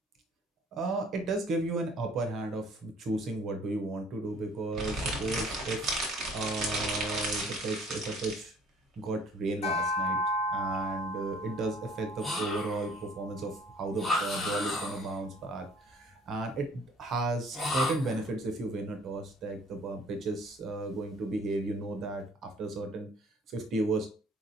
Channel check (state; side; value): normal; both; correlation 0.56